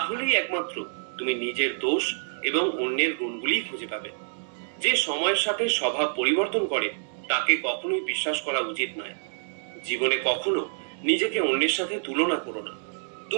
একমাত্র তুমি নিজের দোষ এবং অন্যের গুণগুলি খুঁজে পাবে। যে সময়ের সাথে স্বভাব পরিবর্তন করে তাকে কখনোই বিশ্বাস করা উচিত নয়। জীবনে কখনো নিজেকে অন্যের সাথে তুলনা করো না।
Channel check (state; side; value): silent; left; digital silence